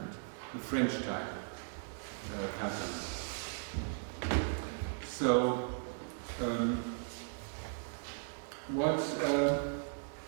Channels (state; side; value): silent; left; digital silence